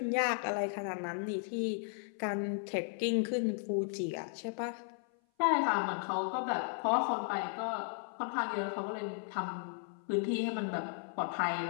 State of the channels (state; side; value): silent; right; 54 dB below the other